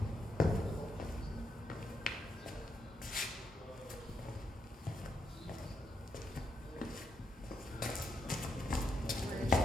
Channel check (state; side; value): normal; both; correlation 0.80